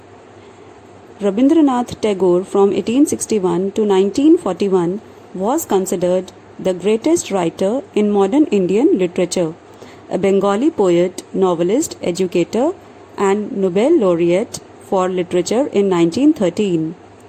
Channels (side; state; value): both; identical; correlation 1.00